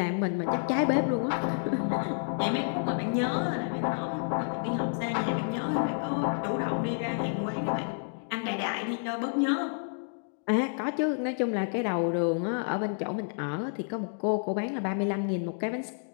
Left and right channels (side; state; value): right; silent; digital silence